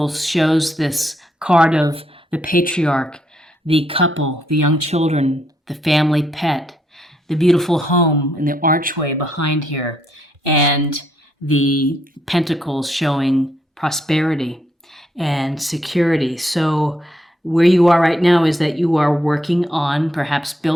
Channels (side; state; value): both; normal; correlation 0.75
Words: shows this card of the patriarch, the couple, the young children, the family pet, the beautiful home and the archway behind here, and the pentacles showing prosperity and security. So where you are right now is that you are working on perhaps